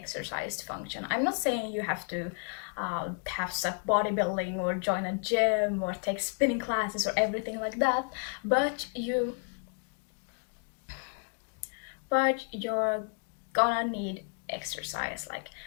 to function. I'm not saying you have to have stuck bodybuilding or join a gym or take spinning classes or everything like that, but you're gonna need exercise, like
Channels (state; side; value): quieter; right; 39.9 dB